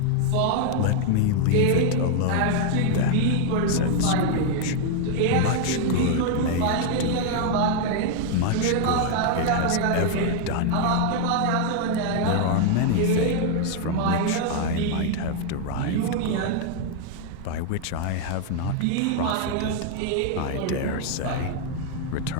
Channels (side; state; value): both; different; correlation 0.00